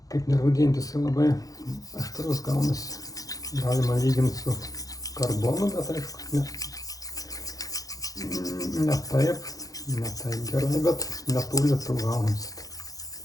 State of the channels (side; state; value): right; late; 0.17 ms